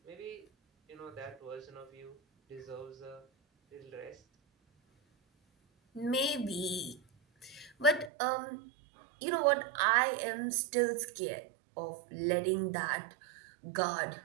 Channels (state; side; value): drops out; left; at 8.1 s